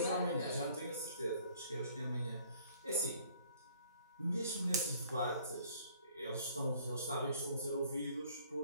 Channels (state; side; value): inverted; both; correlation -0.58